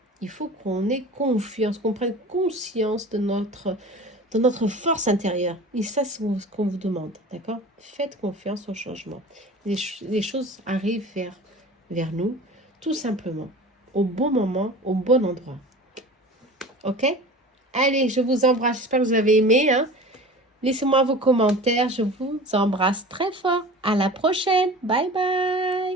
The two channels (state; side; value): normal; both; correlation 0.38